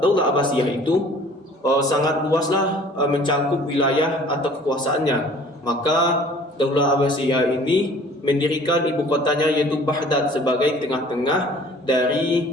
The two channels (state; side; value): normal; both; correlation 0.50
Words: Daulah Abbasiyah itu sangat luaslah mencakup wilayah atau kekuasaannya. Maka Daulah Abbasiyah ini mendirikan ibu kotanya yaitu Baghdad sebagai tengah-tengah dari